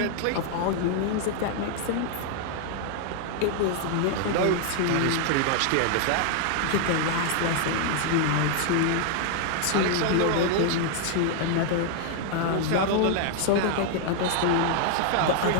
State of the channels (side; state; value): both; different; correlation 0.00